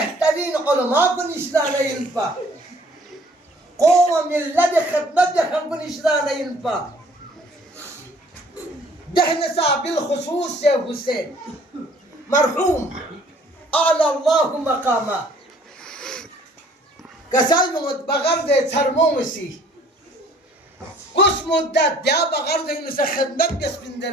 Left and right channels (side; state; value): both; normal; correlation 0.57